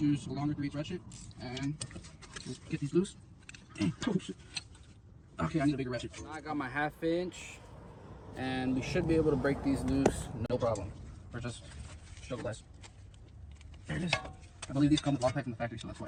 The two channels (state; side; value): identical; both; correlation 1.00